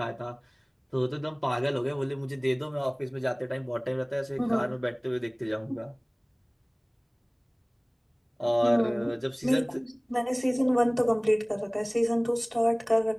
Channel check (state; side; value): identical; both; correlation 1.00